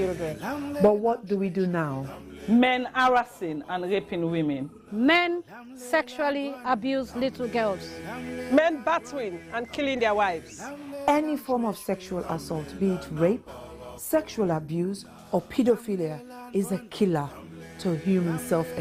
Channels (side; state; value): both; identical; correlation 1.00